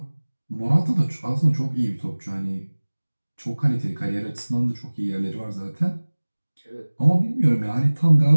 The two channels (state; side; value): inverted; both; correlation -1.00